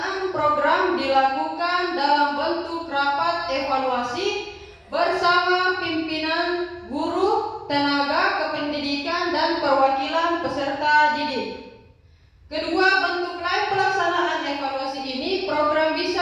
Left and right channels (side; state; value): both; identical; correlation 1.00